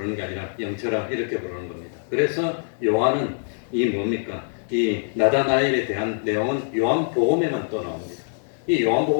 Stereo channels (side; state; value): right; silent; 63 dB below the other